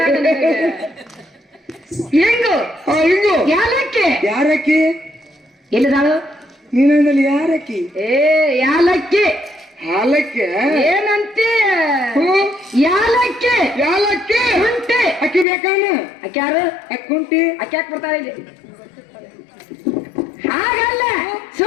ಇಂಗು ಹಿಂಗು ಯಾಲಕ್ಕಿ. ಯಾರಕ್ಕಿ? ಎಲ್ಲಿದಾಳು? ನೀನಲ್ಲಿ ಯಾರಕ್ಕಿ? ಏ ಯಾಲಕ್ಕಿ. ಹಾಲಕ್ಕೆ ಏನಂತಿ? ಯಾಲಕ್ಕಿ. ಯಾಲಕ್ಕಿ ಶುಂಠಿ. ಅಕ್ಕಿ ಬೇಕಾನ? ಅಕ್ಕಿ ಯಾರು? ಅಕ್ಕುಂಟಿ ಅಕ್ಕಿ ಯಾಕೆ ಬರ್ತಾಳೆ ಇಲ್ಲಿ? ಹಾಗಲ್ಲ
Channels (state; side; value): drops out; right; at 15.5 s